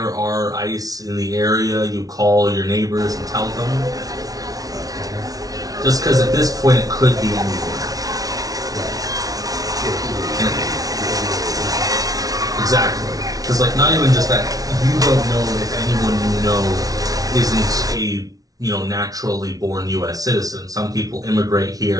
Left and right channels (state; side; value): late; left; 0.18 ms